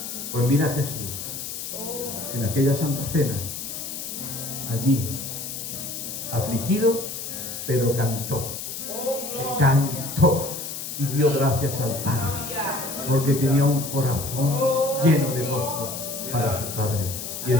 Pues mira a Jesús en aquella Santa Cena, allí, afligido, pero cantó y dio gracias al Padre, porque tenía un corazón lleno de gozo para su Padre. Y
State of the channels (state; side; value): noise; left; hiss, 7 dB below the sound